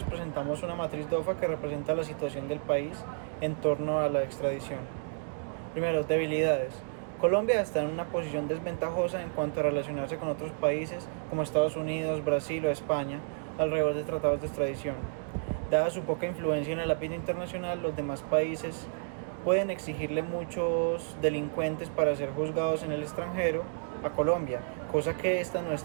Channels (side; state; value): left; silent; digital silence